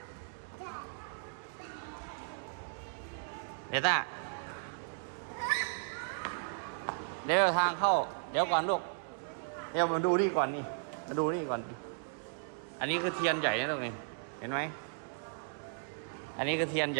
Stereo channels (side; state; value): left; silent; 54 dB below the other